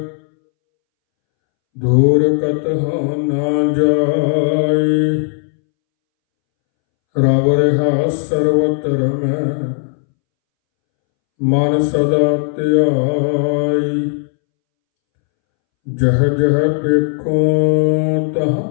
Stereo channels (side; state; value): right; silent; 67 dB below the other